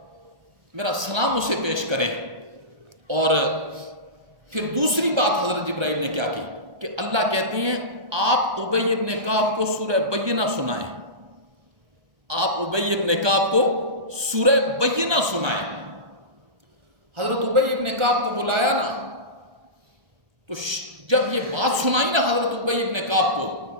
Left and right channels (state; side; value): late; left; 1.3 ms